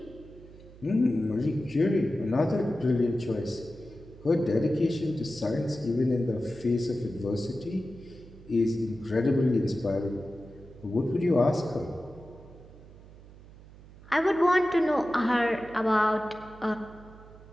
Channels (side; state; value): right; noise; hum, 20 dB below the sound